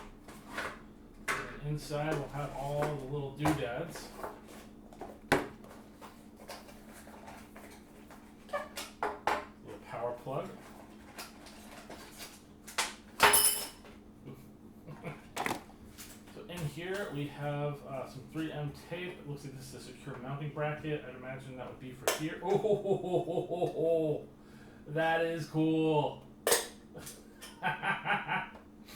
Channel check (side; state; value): both; identical; correlation 1.00